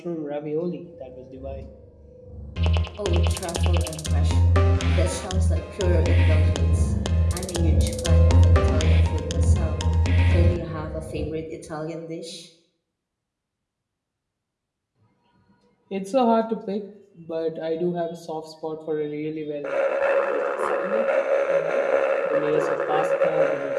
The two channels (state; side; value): identical; both; correlation 1.00